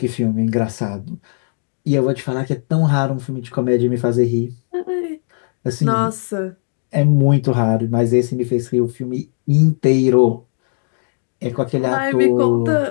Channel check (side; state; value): right; silent; digital silence